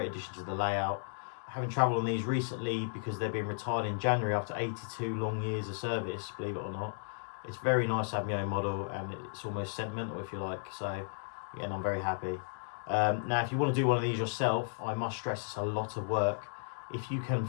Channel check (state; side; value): silent; right; digital silence